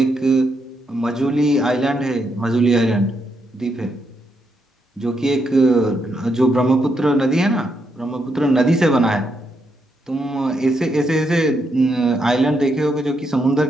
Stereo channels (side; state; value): both; normal; correlation 0.80